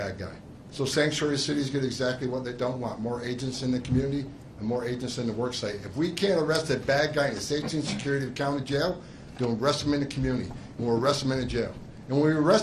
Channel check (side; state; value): both; identical; correlation 1.00